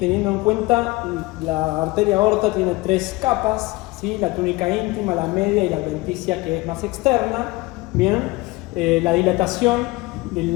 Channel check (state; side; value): quieter; right; 21.6 dB